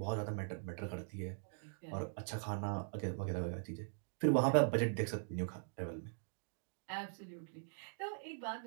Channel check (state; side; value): silent; left; digital silence